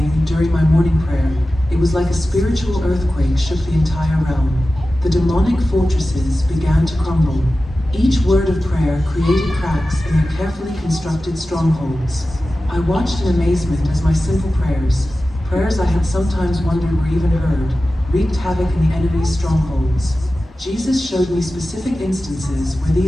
during my morning prayer, it was like a spiritual earthquake shook the entire realm. The demonic fortresses began to crumble. Each word of prayer created cracks in their carefully constructed strongholds. I watched in amazement as my simple prayers I had sometimes wondered were even heard, wreaked havoc in the enemy's strongholds. Jesus showed me specific instances where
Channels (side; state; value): both; normal; correlation 0.94